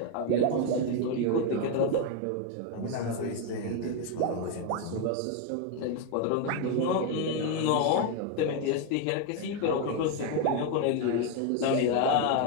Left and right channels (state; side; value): different; both; correlation 0.01